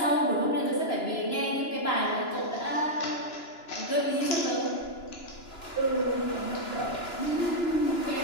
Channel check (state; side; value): late; right; 2.9 ms